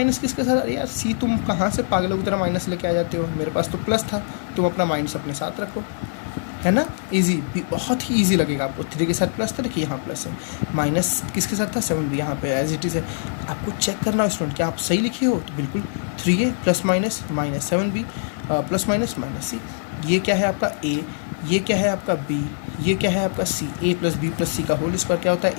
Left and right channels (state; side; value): silent; right; digital silence